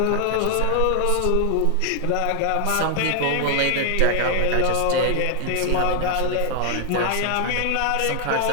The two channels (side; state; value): both; different; correlation 0.00